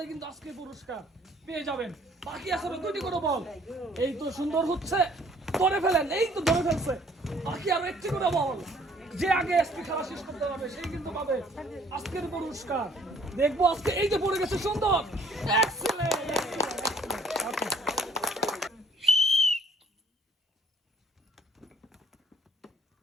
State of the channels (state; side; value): normal; both; correlation 0.58